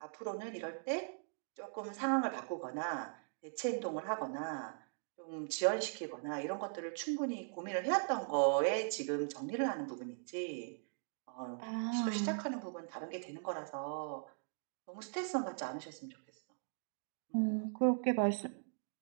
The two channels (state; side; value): silent; left; digital silence